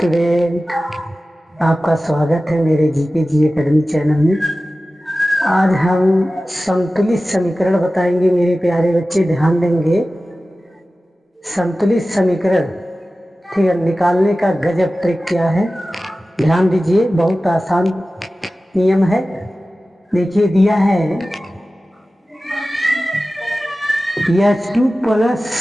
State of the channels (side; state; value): both; normal; correlation 0.96